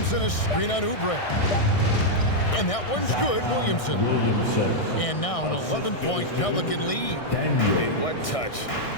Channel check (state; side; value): late; right; 1.6 ms